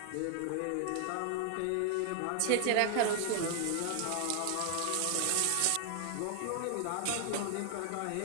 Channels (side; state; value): both; different; correlation 0.00